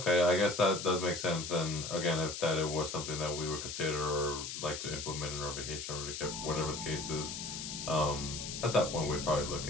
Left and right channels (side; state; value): left; noise; hiss, 6 dB below the sound